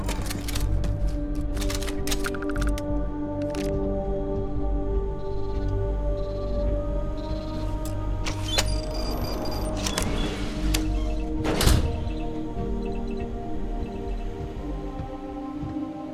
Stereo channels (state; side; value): identical; both; correlation 1.00